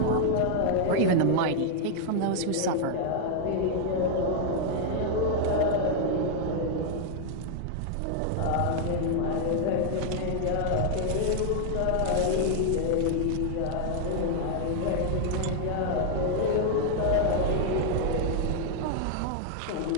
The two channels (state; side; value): different; both; correlation 0.00